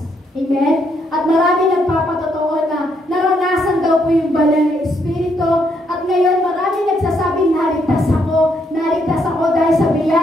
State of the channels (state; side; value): normal; both; correlation 0.74